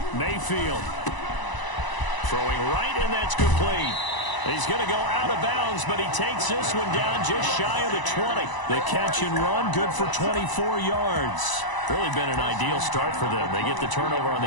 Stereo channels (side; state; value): right; late; 1.0 ms